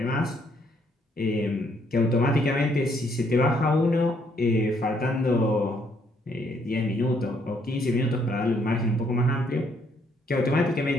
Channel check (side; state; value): both; normal; correlation 0.70